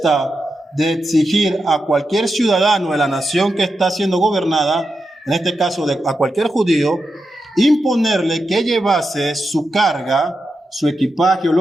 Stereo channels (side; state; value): both; normal; correlation 0.88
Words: de exigir a cualquier ciudadano de la nación que está siendo gobernada, en este caso a cualquier judío, imponerle que llevase su carga, su equipaje o